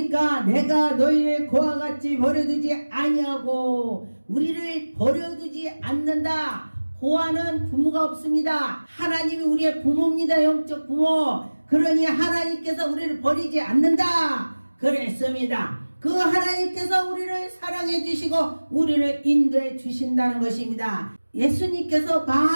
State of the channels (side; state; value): both; inverted; correlation -1.00